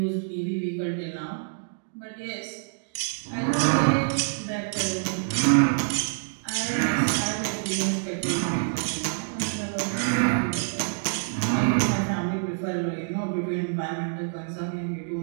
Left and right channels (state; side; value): silent; left; digital silence